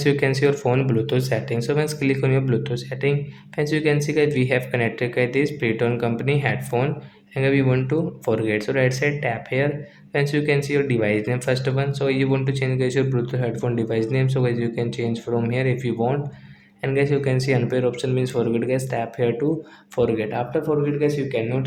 you can see your phone Bluetooth setting. So once click on your Bluetooth setting friends, you can see guys we have connected guys this Preton company headphone and we want to forget. So right side tap here friends, you can see your device name first one. So you want to change guys your Bluetooth headphone device name. So guys you can change from here if you want. And guys you can see unpair option means forget guys, tap here to forget. After forget guys you cannot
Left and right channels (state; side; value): identical; both; correlation 1.00